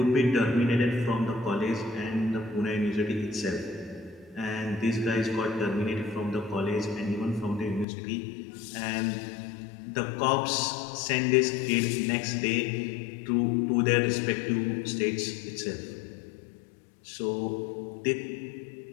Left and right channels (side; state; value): right; drops out; at 7.9 s